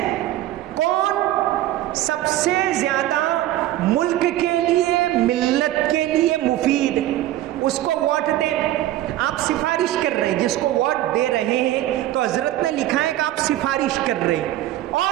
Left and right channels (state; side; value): quieter; left; 14.3 dB